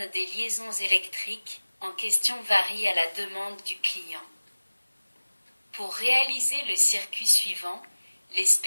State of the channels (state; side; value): inverted; both; correlation -1.00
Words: des liaisons électriques en question varie à la demande du client. Pour réaliser le circuit suivant, les